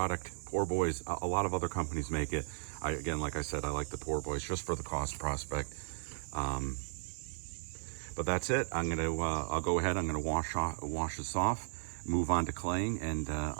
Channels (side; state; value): left; silent; 54 dB below the other